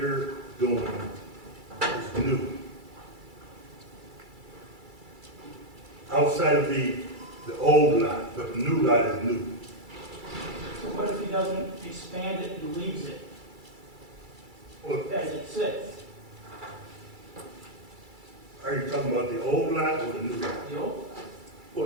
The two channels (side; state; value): left; late; 2.3 ms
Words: doing is new. Outside of the old lot, but the new lot is new. So what if he doesn't expand it and leaves it Well, as it sits? are you talking about the old lot or the new lot? The old?